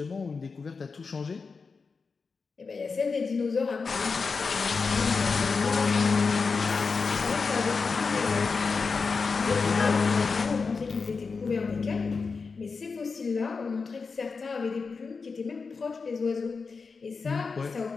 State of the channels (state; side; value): quieter; right; 4.8 dB